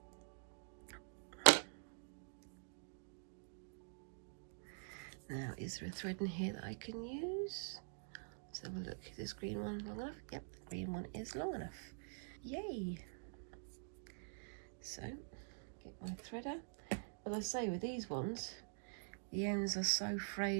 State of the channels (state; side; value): silent; left; digital silence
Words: Now, is there a thread in here that I can use? Let's have a look. Is this green one long enough? Yep, the green one is long enough. Yay! So, get my threader. As I say, with these ones, the ends are so